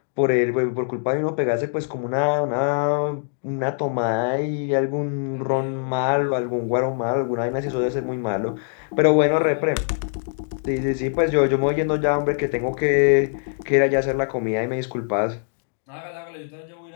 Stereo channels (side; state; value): right; silent; digital silence